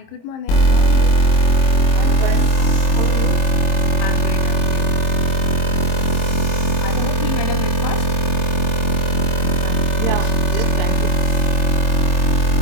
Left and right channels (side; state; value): right; late; 26 ms